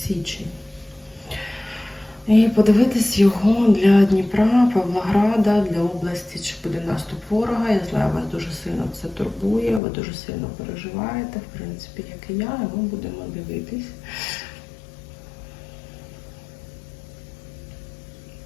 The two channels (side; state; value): right; drops out; at 9.8 s